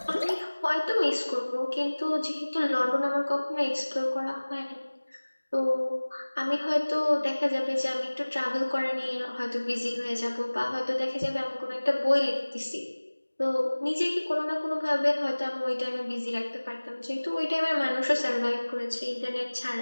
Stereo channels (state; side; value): inverted; both; correlation -1.00